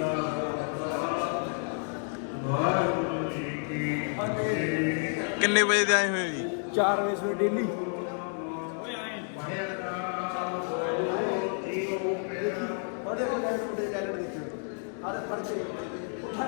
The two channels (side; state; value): right; silent; 56 dB below the other